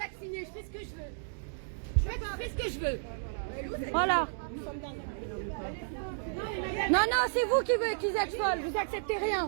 je fais ce que je veux. Je fais ce que je veux. Voilà. Non, c'est vous qui êtes folle. Vous acceptez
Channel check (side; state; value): left; silent; digital silence